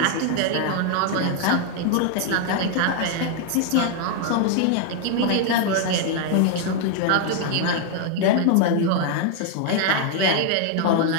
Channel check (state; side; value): different; both; correlation 0.00